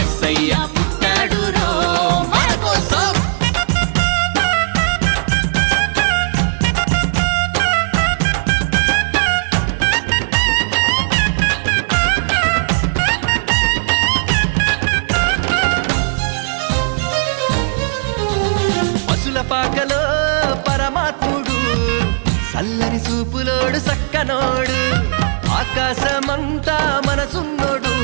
పుట్టాడు రో మన కోసం పశుల పాకలో పరమాత్ముడు చల్లని చూపులోడు సక్కనోడు ఆకాశమంతా మనసున్నోడు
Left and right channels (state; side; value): silent; left; digital silence